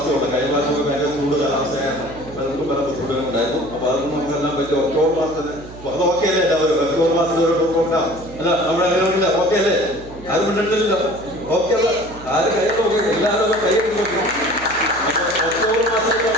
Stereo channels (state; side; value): noise; right; hum, 17 dB below the sound